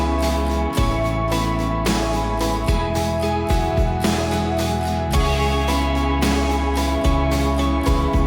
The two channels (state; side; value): identical; both; correlation 1.00